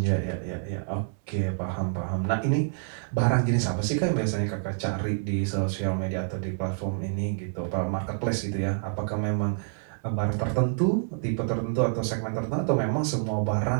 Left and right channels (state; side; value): silent; left; 60 dB below the other